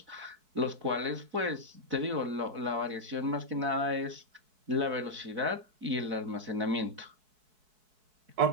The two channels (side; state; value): left; late; 4.6 ms